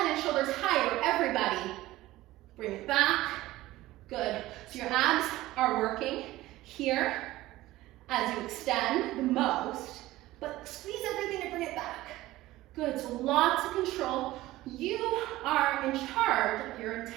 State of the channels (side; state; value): left; quieter; 17.0 dB